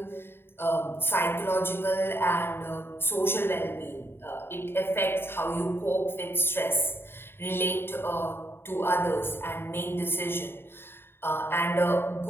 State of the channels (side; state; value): right; late; 0.11 ms